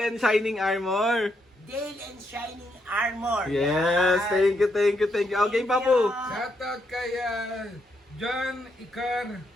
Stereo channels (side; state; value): both; normal; correlation 0.78